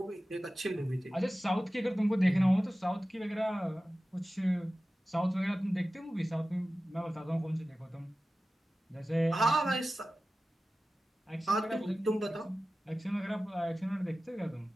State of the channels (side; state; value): both; normal; correlation 0.95